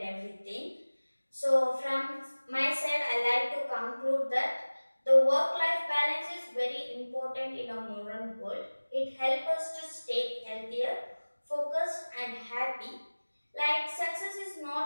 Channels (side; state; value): both; inverted; correlation -1.00